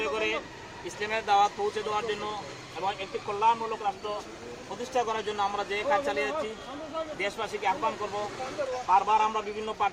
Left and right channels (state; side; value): identical; both; correlation 1.00